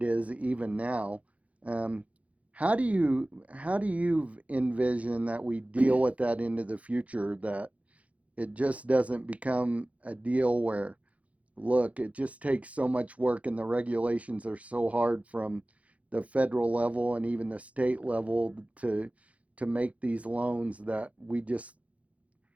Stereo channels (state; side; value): late; left; 0.066 ms